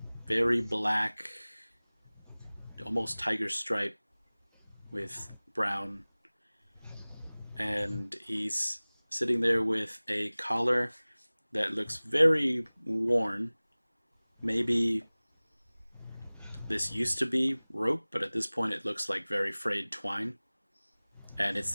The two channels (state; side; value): inverted; both; correlation -1.00